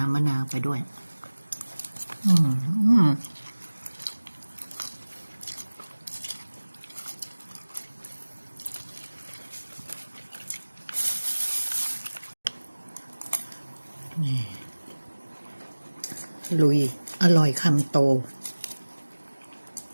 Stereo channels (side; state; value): both; inverted; correlation -1.00